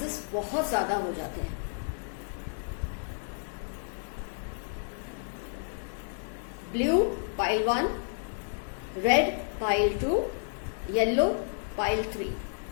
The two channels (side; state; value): right; silent; 57 dB below the other